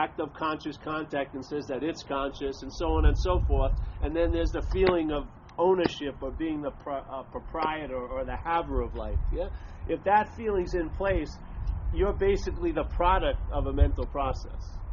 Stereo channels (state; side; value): identical; both; correlation 1.00